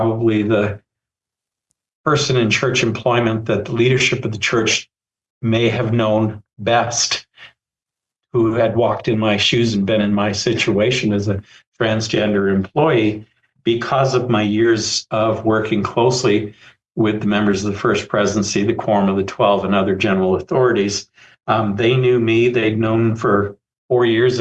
the person in church employment that the leadership of the church may have known best, who had walked in my shoes and been in my situation as a transgender employee because of my years of working closely with the members of the First Presidency, the Quorum of the 12, and other general authorities. They knew me. They'd known for 4 years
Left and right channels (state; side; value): identical; both; correlation 1.00